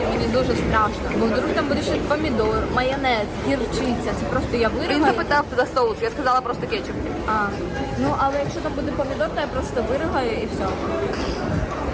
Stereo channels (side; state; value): both; identical; correlation 1.00